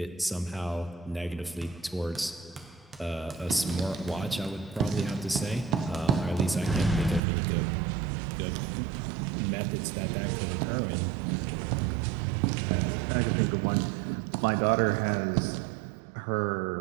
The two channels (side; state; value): left; drops out; at 7.2 s